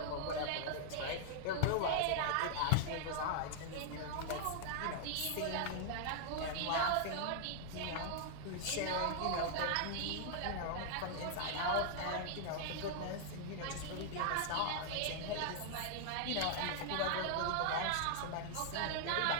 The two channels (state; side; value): different; both; correlation -0.01